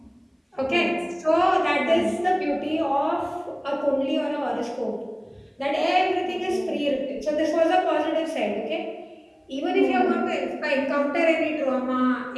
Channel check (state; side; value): identical; both; correlation 1.00